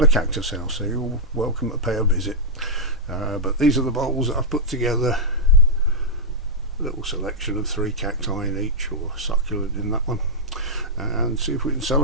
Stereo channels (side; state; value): both; normal; correlation -0.07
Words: cactus house, so you're welcome to pay a visit. But these are the bowls that I've put together. A little selection of 3 cacti in each, or succulent in that one, and see if we can sell